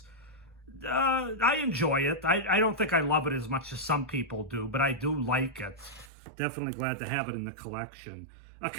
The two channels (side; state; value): left; drops out; at 6.1 s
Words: I enjoy it. I don't think I love it as much as some people do, but I do like it. Definitely glad to have it in the collection. A